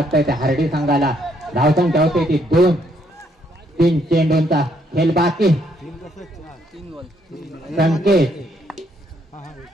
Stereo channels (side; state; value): both; normal; correlation 0.71